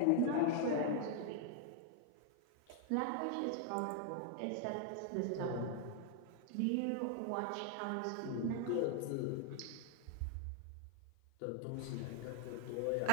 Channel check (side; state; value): both; different; correlation 0.00